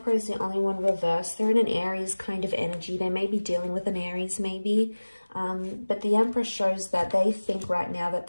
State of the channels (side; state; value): both; inverted; correlation -1.00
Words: is the only one reversed. They're in an Aries kind of energy. They may be dealing with an Aries maybe. But the Emperor shows that they think right now that